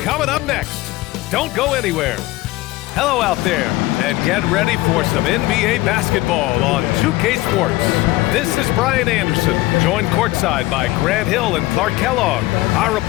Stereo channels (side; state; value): right; quieter; 18.8 dB